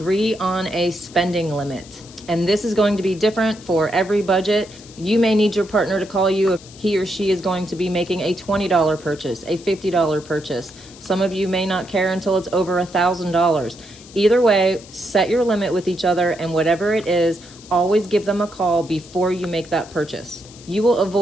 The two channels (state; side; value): noise; left; hiss, 20 dB below the sound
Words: on a spending limit. And this is going to be different for every budget. You may need your partner to call you if he or she is going to be making a $20 purchase, a $50 purchase. Some of you may not care until it's over $1,000. Either way, set your limit with each other, and whatever it is, always give them a call before you make that purchase. You will